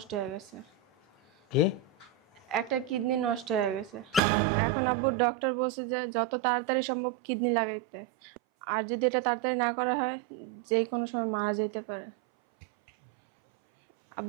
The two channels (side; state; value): left; drops out; at 4.2 s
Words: হয়ে গেছে। কি? একটা কিডনি নষ্ট হয়ে গেছে। এখন আব্বু ডক্টর বলছে যে যত তাড়াতাড়ি সম্ভব কিডনি লাগাইতে, আর যদি এটা তাড়াতাড়ি না করা হয় যে কোনো সময় মারা যেতে পারে।